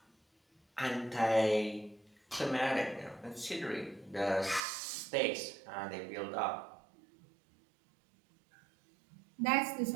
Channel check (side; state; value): left; drops out; at 4.6 s